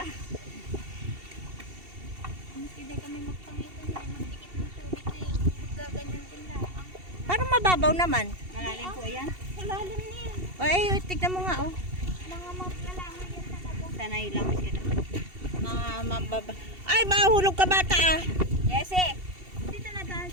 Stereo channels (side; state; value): left; late; 2.7 ms